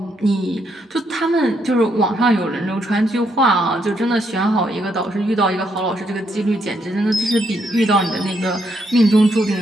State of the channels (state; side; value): normal; both; correlation 0.76